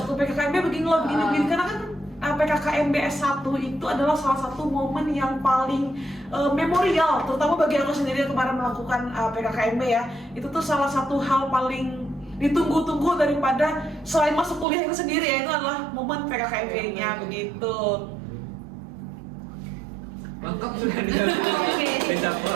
PKKMB begini karena kan PKKMB S1 itu adalah salah satu momen yang paling memorial, terutama bagi aku sendiri yang kemarin melakukan PKKMB ya. Itu tuh salah satu hal paling ditunggu-tunggu daripada selain masuk kuliah itu sendiri ya, itu adalah momen PKKMB-nya begitu. Lengkap sudah bisa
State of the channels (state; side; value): drops out; left; at 14.7 s